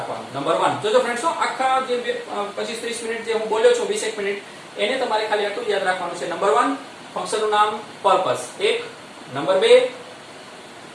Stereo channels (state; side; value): identical; both; correlation 1.00